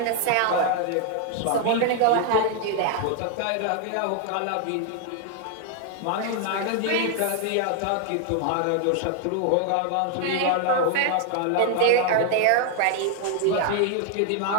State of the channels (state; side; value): different; both; correlation 0.00